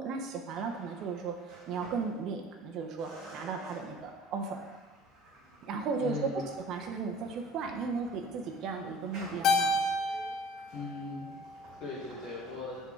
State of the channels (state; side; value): normal; both; correlation 0.45